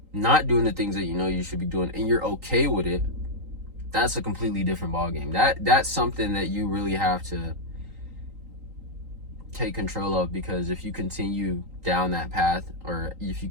not doing the things that you know you should be doing and you're okay with it, that's a completely different ballgame. That's something that you really have to take control of, because if you continue down that path, or if you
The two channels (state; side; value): late; left; 3.8 ms